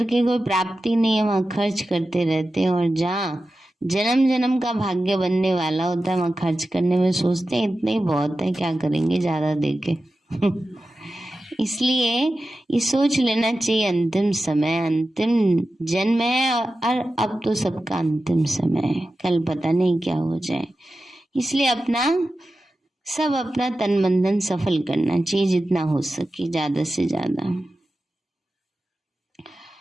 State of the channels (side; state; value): both; normal; correlation 0.93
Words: कोई प्राप्ति नहीं है वहां खर्च करते रहते हैं, और जहाँ जन्म जन्म का भाग्य बनने वाला होता है वहां खर्च करने में सोचते हैं इतना ही बहुत है, क्या करेंगे ज्यादा देके। इसलिए ये सोच लेना चाहिए अंतिम समय, अंतिम जन्म है और अब तो सबका अंतिम समय है, कल पता नहीं क्या हो जाए। इसलिए अपना तन मन धन सफल करना चाहिए, जितना हो सके ज्यादा से ज्यादा।